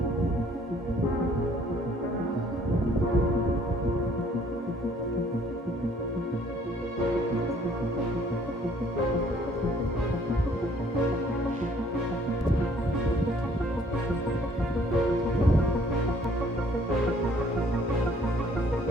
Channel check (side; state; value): both; normal; correlation 0.60